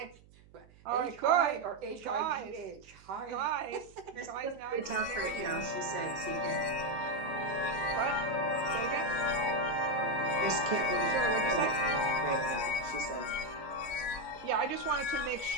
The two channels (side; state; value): right; noise; hum, 25 dB below the sound